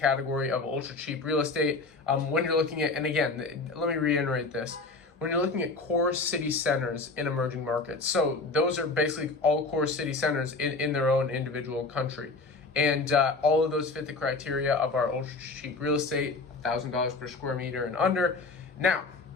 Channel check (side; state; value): right; quieter; 3.7 dB